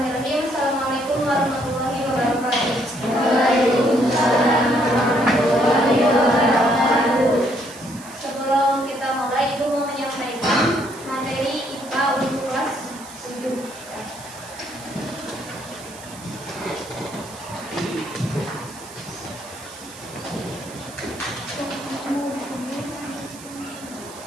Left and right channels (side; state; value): right; noise; hiss, 17 dB below the sound